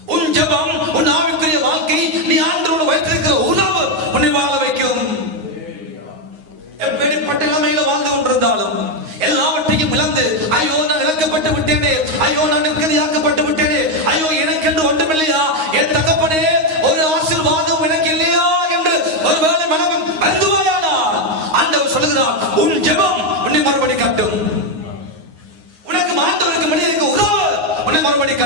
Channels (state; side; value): late; left; 9.5 ms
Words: நான் நிம்மதியாக்கப்பட்டு விட்டேனே, ஐயோ எனக்கென்று ஒன்றுமில்லையா, என் தகப்பனே ஒரு ஆசீர்வாதம் எனக்கு இல்லையா என்று ஒருவேளை மனவன் வருந்துவாயானால் ஆண்டவர் சொல்லுகிறார், உன் ஜெபம் உன்னை மறுபடி கட்டும். உனக்கு ஆண்டவருக்கு மனிதனுக்கு உறவு உன்னை மறுபடி